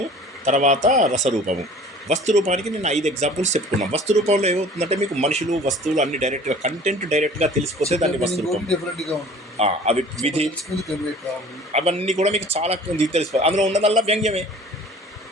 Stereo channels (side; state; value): both; normal; correlation 0.47